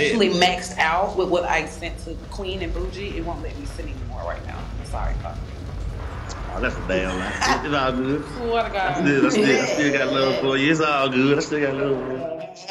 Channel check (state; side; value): identical; both; correlation 1.00